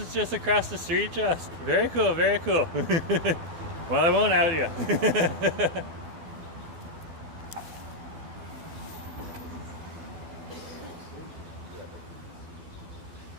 just across the street, just. Very cool, very cool. Well, I won't out you.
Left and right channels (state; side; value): late; left; 12 ms